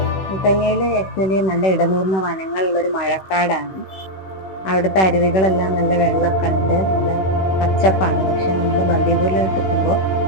മുത്തങ്ങയിൽ ആക്ച്വലി നല്ല ഇടനൂർന്ന വനങ്ങളുള്ളൊരു മഴക്കാടാണ്. അവിടുത്തെ അരുവികളെല്ലാം നല്ല വെള്ളമൊക്കെ ഉണ്ട്, നല്ല പച്ചപ്പാണ്. പക്ഷെ നമ്മൾ ബന്ദിപൂരിലോട്ട് എത്തുമ്പോൾ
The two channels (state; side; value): late; right; 16 ms